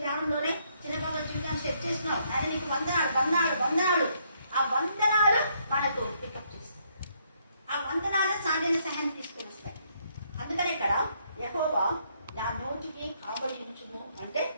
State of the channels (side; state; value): both; inverted; correlation -0.71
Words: చిన్న పాప జీవితాన్ని సెట్ చేసినావు. ఆయన నీకు వందనాలు. ఆ వందనాలు మనకు పికప్ చేస్తాయి. ఆ వందనాలు సాధ్యమైన సహాయం తీసుకుని వస్తాయి. అందుకని ఇక్కడ యెహోవా నా నోటికి కావలి ఉంచుము అంటే,